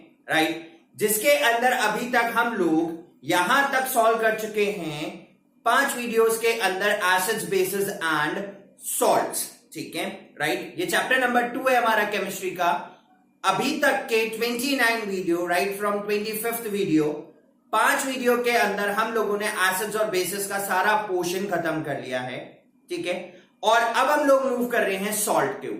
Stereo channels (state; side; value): identical; both; correlation 1.00